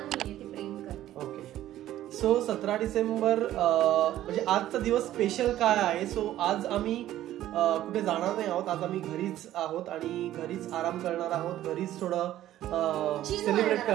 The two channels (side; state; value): left; quieter; 13.3 dB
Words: ओके, सो 17 डिसेंबर म्हणजे आजचा दिवस स्पेशल काय आहे। सो आज आम्ही कुठे जाणार नाही आहोत, आज आम्ही घरीच आहोत आणि घरीच आराम करणार आहोत, घरीच थोडं सेलिब्रेट